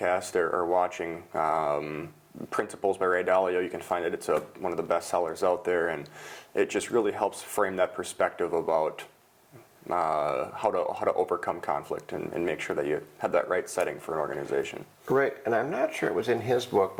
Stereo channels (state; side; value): identical; both; correlation 1.00